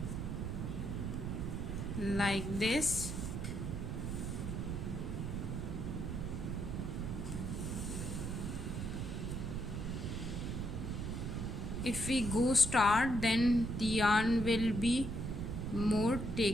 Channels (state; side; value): noise; right; rumble, 3 dB below the sound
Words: like this. If we go start, then the yarn will be more